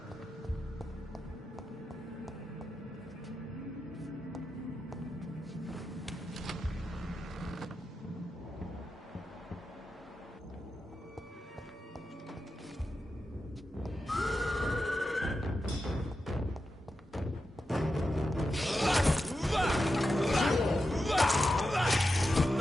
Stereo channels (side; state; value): both; normal; correlation 0.89